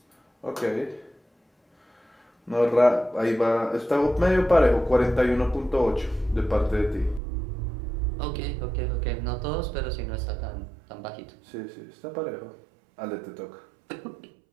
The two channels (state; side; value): drops out; left; at 7.2 s